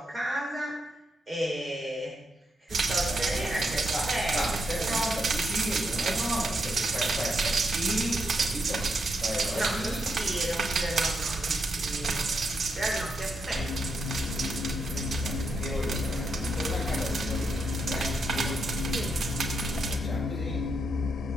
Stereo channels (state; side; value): normal; both; correlation 0.80